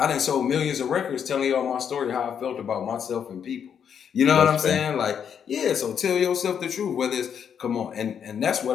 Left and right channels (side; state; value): right; quieter; 7.9 dB